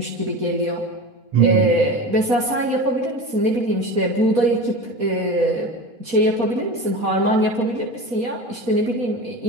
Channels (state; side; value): late; left; 4.2 ms